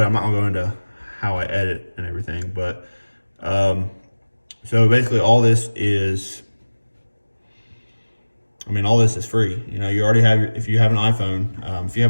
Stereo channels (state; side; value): inverted; both; correlation -1.00